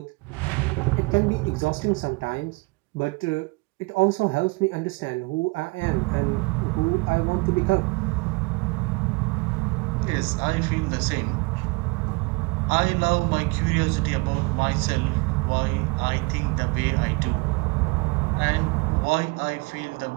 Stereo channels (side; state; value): left; quieter; 27.7 dB